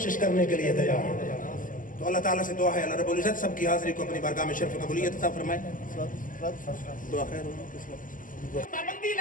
کرنے کے لیے تیار ہیں. تو اللہ تعالیٰ سے دعا ہے اللہ رب العزت سب کی حاضری کو اپنی بارگاہ میں شرف قبولیت عطا فرمائے. دعا خیر ہو. پابندی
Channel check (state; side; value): late; right; 0.39 ms